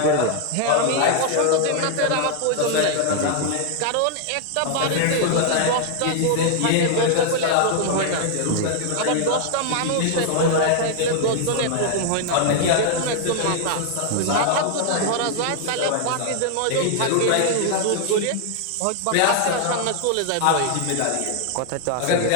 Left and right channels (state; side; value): different; both; correlation 0.00